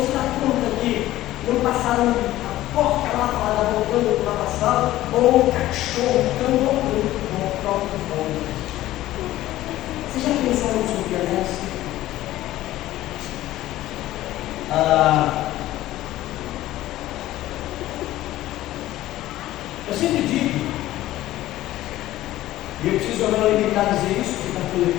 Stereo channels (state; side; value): quieter; right; 15.2 dB